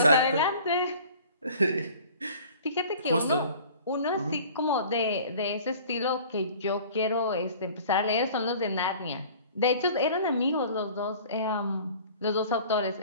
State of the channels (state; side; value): inverted; both; correlation -0.47